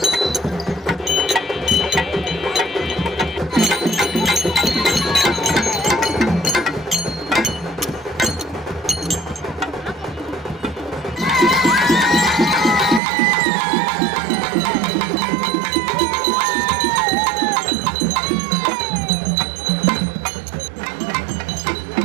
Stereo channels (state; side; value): drops out; left; at 13.0 s